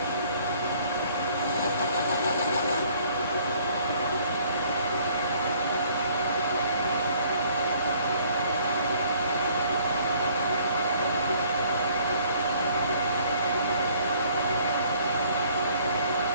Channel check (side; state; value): both; inverted; correlation -0.59